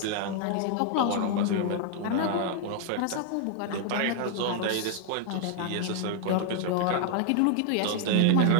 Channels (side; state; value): both; different; correlation 0.00